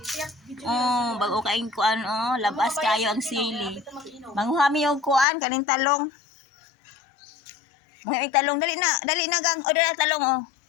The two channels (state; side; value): drops out; right; at 5.2 s